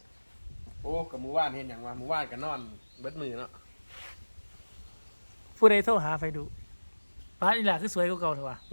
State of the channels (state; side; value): inverted; both; correlation -1.00